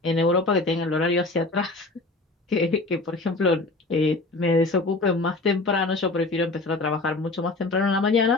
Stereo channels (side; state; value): right; quieter; 3.2 dB